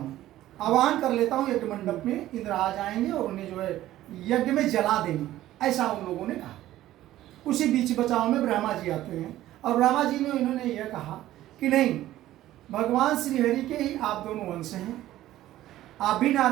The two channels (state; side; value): quieter; left; 14.3 dB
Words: आह्वान कर लेता हूँ यज्ञ मंडप में, इंद्र आ जाएंगे और उन्हें जो है यज्ञ में जला देंगे। ऐसा उन लोगों ने कहा। उसी बीच बचाव में ब्रह्मा जी आते हैं और ब्रह्मा जी ने इन्होंने यह कहा कि नहीं, भगवान श्री हरि के ही आप दोनों वंश हैं, आप भी